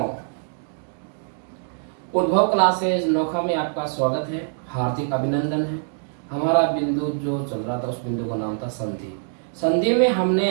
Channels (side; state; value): left; silent; digital silence